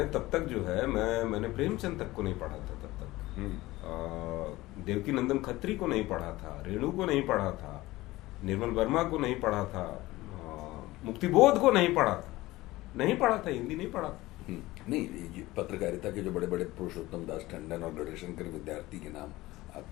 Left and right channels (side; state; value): right; quieter; 18.5 dB